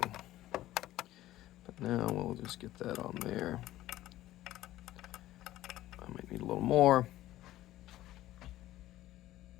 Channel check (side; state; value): right; quieter; 15.0 dB